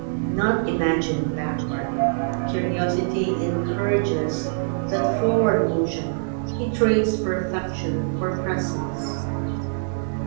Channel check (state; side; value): silent; left; digital silence